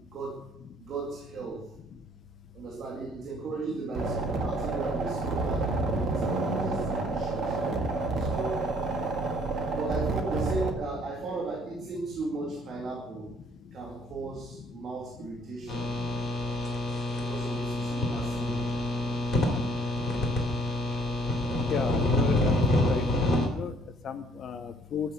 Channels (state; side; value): normal; both; correlation 0.61